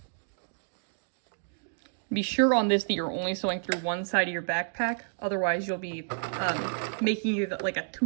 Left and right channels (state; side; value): silent; left; digital silence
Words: Be sure on this that you're only sewing through one side of your backpack. Otherwise, you'll be making it like a